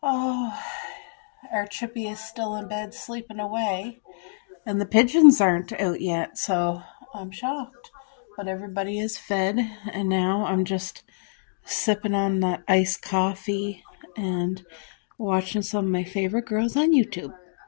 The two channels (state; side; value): silent; right; digital silence